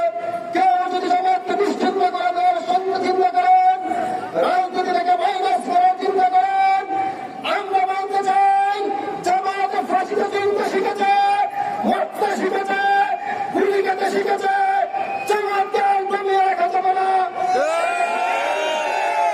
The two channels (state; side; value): identical; both; correlation 1.00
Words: কেউ যদি জামাতকে নিশ্চিহ্ন করে দেওয়ার চিন্তা করেন, রাজনীতি থেকে মাইনাস করার চিন্তা করেন, আমরা বলতে চাই জামাত ফাঁসিতে চিনতে শিখেছে, মরতে শিখেছে, গুলি খেতে শিখেছে। জামাতকে দমিয়ে রাখা যাবে না।